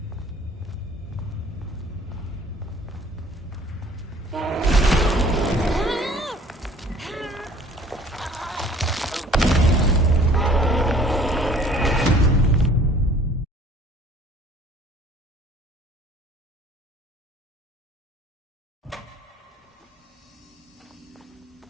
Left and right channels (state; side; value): normal; both; correlation 0.52